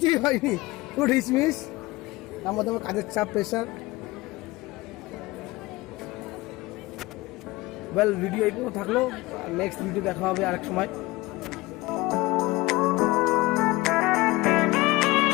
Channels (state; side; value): quieter; right; 20.5 dB